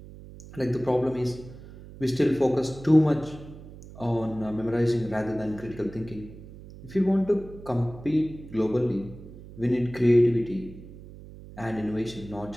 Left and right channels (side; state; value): right; noise; hum, 17 dB below the sound